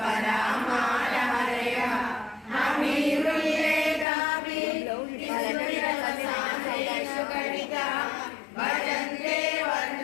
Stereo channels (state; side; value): drops out; right; at 4.0 s